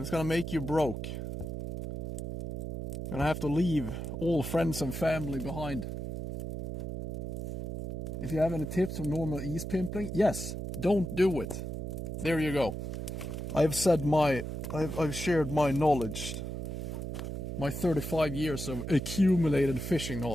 it's gonna make you broke. You're gonna have to leave all friends and family behind. If you have any tips on normal ease pimpling, yes, don't do it. There you go. I've shared my knowledge, my 35 years of accumulated fishing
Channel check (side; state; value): right; noise; hum, 5 dB below the sound